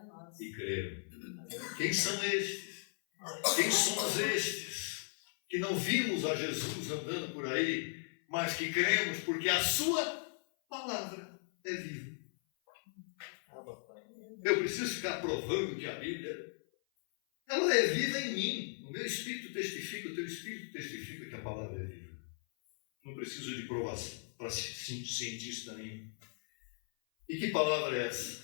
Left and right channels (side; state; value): right; silent; 53 dB below the other